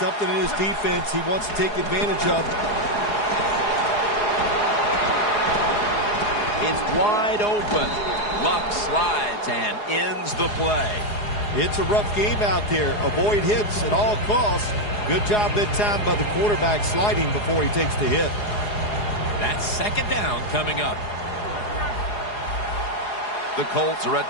in his defense he wants to take advantage of. It's wide open. Luck slides and ends the play. It's a rough game out there. Avoid hits at all costs. Good job that time by the quarterback sliding before he takes the hit. That's second down coming up. The Colts are at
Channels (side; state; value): right; late; 4.8 ms